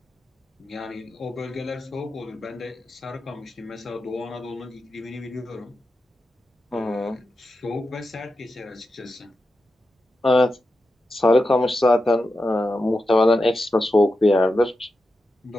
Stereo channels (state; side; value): normal; both; correlation 0.90